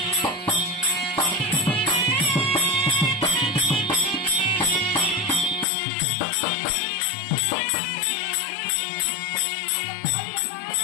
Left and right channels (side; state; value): right; drops out; at 5.7 s